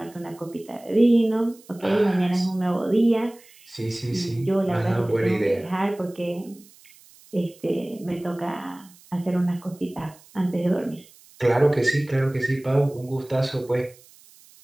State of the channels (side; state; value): right; noise; hiss, 26 dB below the sound